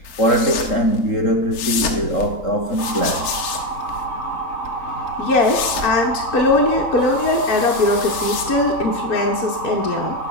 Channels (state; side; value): late; right; 3.8 ms